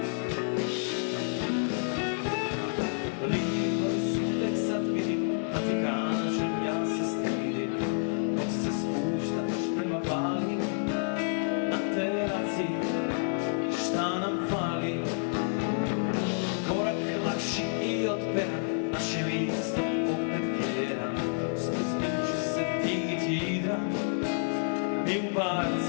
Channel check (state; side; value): silent; right; digital silence